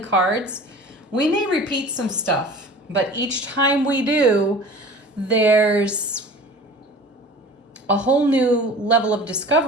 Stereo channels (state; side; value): normal; both; correlation 0.41